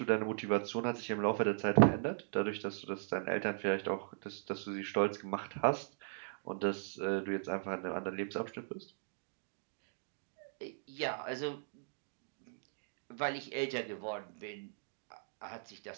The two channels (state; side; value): silent; left; digital silence